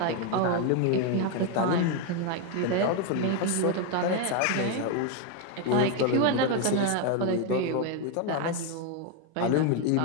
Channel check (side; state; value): both; different; correlation 0.01